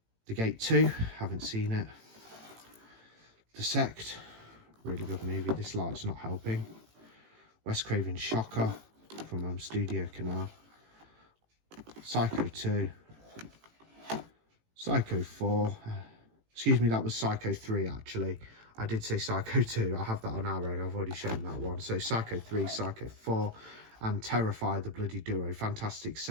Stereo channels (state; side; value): late; left; 18 ms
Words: The Gate 2, haven't seen it. The Sect, really good movie. This light's not helping. Wes Craven's Shocker from Studio Canal. Psycho 2. Psycho 4. Excuse me, that was Psycho 3 actually. I did say Psycho 2. I have that on Arrow. I've already shown that one. So Psycho 3, Psycho 4, and Terrifier, the bloody duo. Fantastic